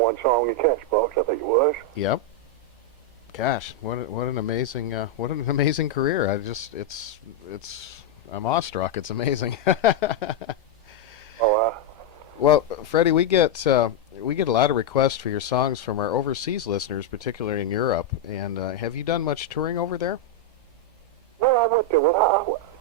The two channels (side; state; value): both; normal; correlation 0.00